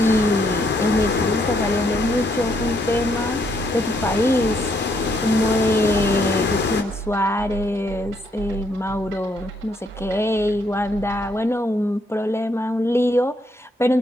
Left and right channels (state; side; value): normal; both; correlation 0.73